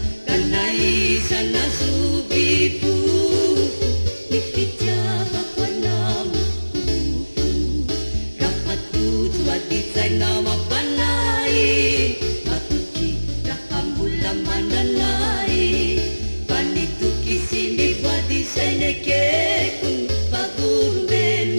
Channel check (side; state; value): both; inverted; correlation -1.00